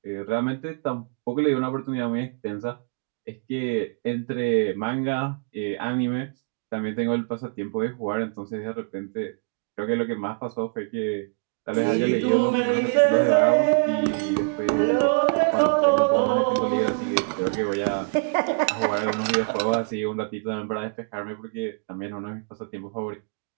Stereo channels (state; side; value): quieter; left; 38.9 dB